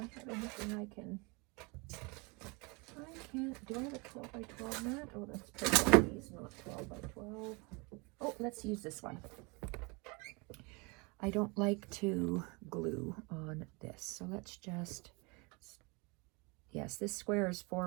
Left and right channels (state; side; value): quieter; left; 28.8 dB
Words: I have anything I can't, do I have a 12 by 12 mat? Oh, that's pretty. These not 12 by 12. Oh, let's use this one. I don't like to glue on this. So let's just, yes, this square is 4